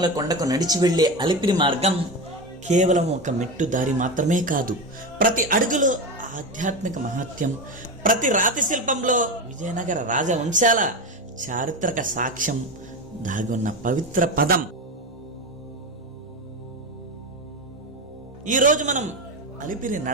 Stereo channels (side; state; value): both; normal; correlation 0.19